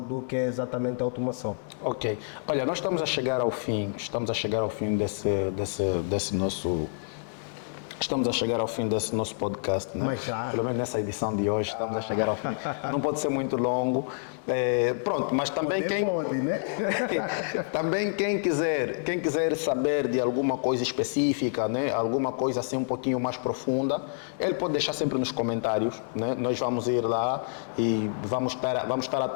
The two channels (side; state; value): right; silent; digital silence